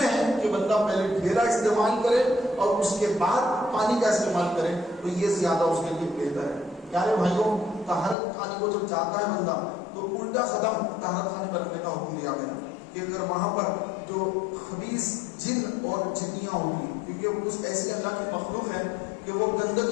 ہے کہ بندہ پہلے ڈھیلا استعمال کرے اور اس کے بعد پانی کا استعمال کرے، تو یہ زیادہ اس کے لیے بہتر ہے۔ پیارے بھائیوں طہارت خانے کو جب جاتا ہے بندہ تو الٹا قدم طہارت خانے پر رکھنے کا حکم دیا گیا کہ اگر وہاں پر جو خبیث جن اور جنیاں ہوگی، کیونکہ وہ کچھ ایسی اللہ کی مخلوق ہے کہ وہ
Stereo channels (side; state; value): right; drops out; at 8.2 s